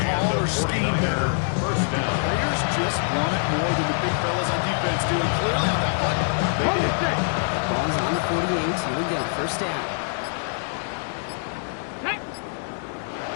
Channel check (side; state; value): right; silent; digital silence